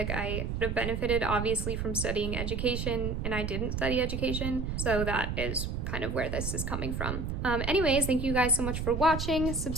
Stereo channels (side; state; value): right; noise; rumble, 3 dB below the sound